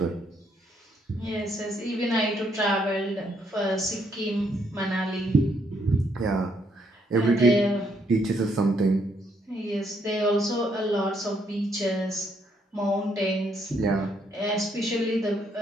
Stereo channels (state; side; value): normal; both; correlation 0.72